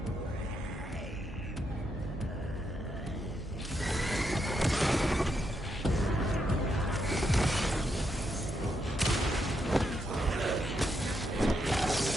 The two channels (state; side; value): normal; both; correlation 0.80